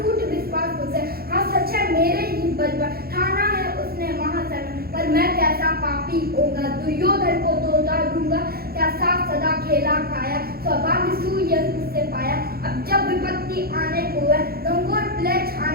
विश्वास उसे। हाँ सच है मेरे ही बल पर ठाना है उसने महासन। पर मैं कैसा पापी होगा, दुर्योधन को तो उतार दूंगा। क्या साथ सदा खेला खाया, सौभाग्य सूर्य उससे पाया। अब जब विपत्ति आने को है, लंगोर प्ले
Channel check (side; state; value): left; late; 0.44 ms